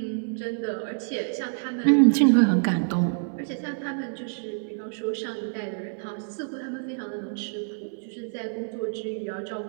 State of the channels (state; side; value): silent; left; digital silence